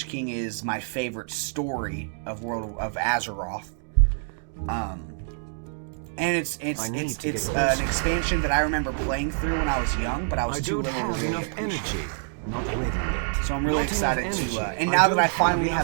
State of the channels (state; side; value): silent; left; 61 dB below the other